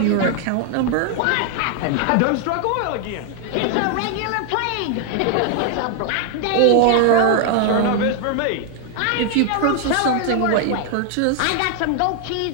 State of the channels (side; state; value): both; different; correlation 0.00